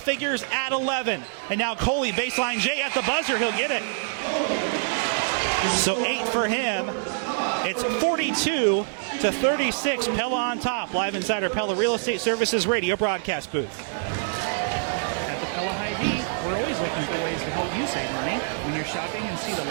at 11. And now Coley, baseline J at the buzzer. He'll get it. So 8 for him. It's 42-36. Pella on top. Live inside our Pella Real Estate Services radio broadcast booth. At the Pella Hy-Vee, we're always looking for ways to help you save money. When you're shopping and see the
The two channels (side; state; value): left; silent; digital silence